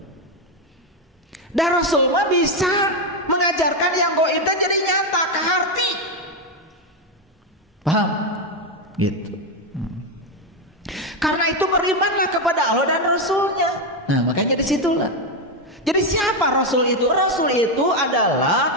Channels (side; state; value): both; normal; correlation 0.07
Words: Dan Rasul mah bisa mengajarkan yang gaib dan jadi nyata ke hati. Paham? Gitu. Karena itu berimanlah kepada Allah dan Rasulnya. Nah, makanya disitulah. Jadi siapa Rasul itu? Rasul itu